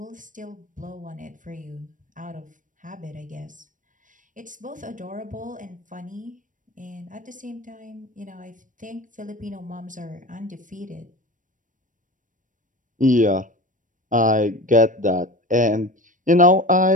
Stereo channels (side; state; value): left; late; 0.38 ms